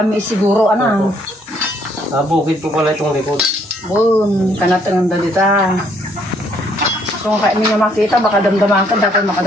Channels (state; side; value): normal; both; correlation 0.67